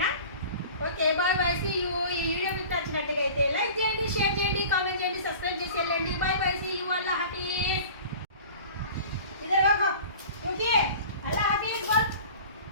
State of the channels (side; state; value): both; inverted; correlation -0.41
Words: Okay bye bye. See you. ఈ వీడియో మీకు నచ్చినట్టుగా అయితే లైక్ చేయండి, షేర్ చేయండి, కామెంట్ చేయండి, సబ్స్క్రైబ్ చేసి వెళ్ళండి. Bye bye. See you. Allah హాఫీజ్. इधर आओ क्योंकि अल्लाह हाफिज बोल.